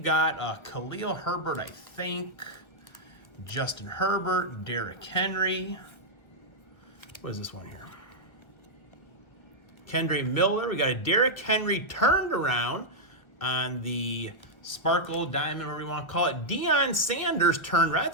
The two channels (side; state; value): right; late; 1.1 ms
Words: got Khalil Herbert, I think. Justin Herbert, Derrick Henry. What is this one here? Kendre Miller. We got a Derrick Henry turned around on the Sparkle Diamond, whatever you want to call it. Deion Sanders turned around.